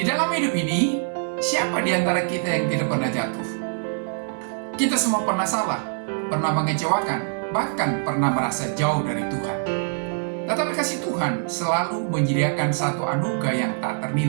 dalam hidup ini, siapa di antara kita yang tidak pernah jatuh? Kita semua pernah salah, pernah mengecewakan, bahkan pernah merasa jauh dari Tuhan. Tetapi kasih Tuhan selalu menyediakan satu anugerah yang tak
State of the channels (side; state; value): left; silent; digital silence